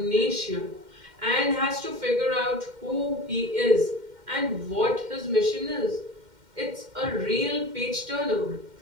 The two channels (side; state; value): left; late; 2.1 ms